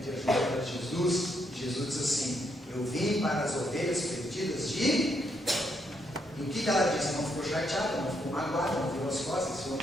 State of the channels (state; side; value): normal; both; correlation 0.76